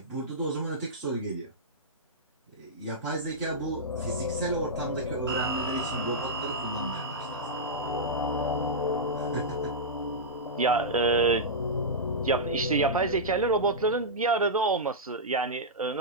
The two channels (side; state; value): both; normal; correlation -0.11